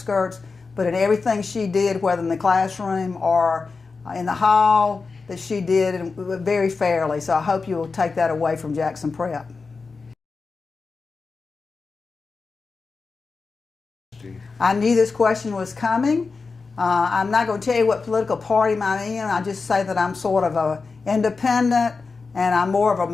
But in everything she did, whether in the classroom or in the hall, that she did very fairly. So I hope you will take that away from Jackson Prep. I knew this question was coming. I'm not going to tell you what political party I'm in. I just say that I'm sort of an independent and I'm more of a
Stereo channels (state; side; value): quieter; right; 4.4 dB